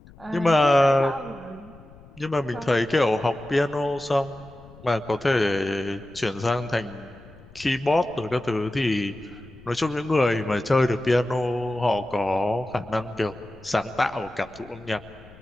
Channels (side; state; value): left; noise; rumble, 22 dB below the sound